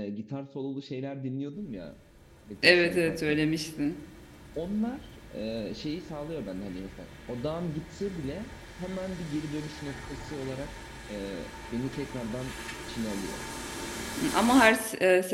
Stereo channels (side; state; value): both; identical; correlation 1.00